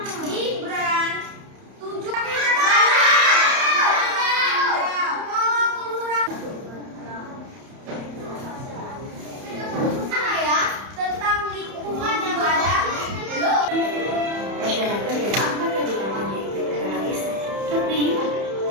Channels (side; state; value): left; late; 31 ms